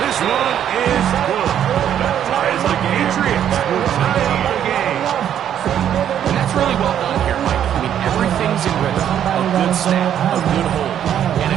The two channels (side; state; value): left; quieter; 9.9 dB